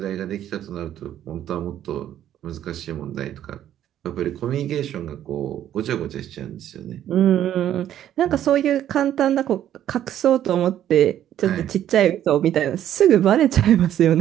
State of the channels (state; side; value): quieter; left; 11.2 dB